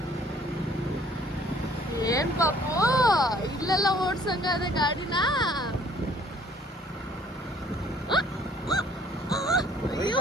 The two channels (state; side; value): normal; both; correlation 0.58